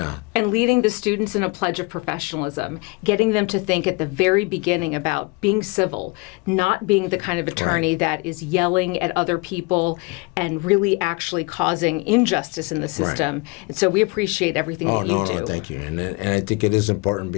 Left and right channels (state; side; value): quieter; right; 26.9 dB